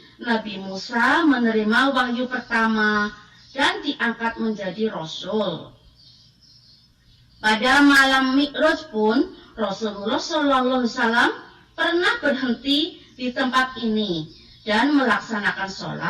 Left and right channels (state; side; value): identical; both; correlation 1.00